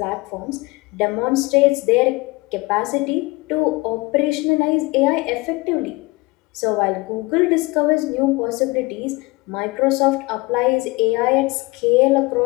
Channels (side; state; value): right; quieter; 24.1 dB